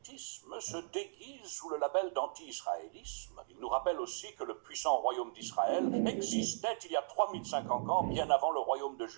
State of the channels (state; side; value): silent; left; digital silence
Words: se déguise sous le label d'anti-israélisme. Il nous rappelle aussi que le puissant royaume d'Israël existait il y a 3050 ans, bien avant le royaume de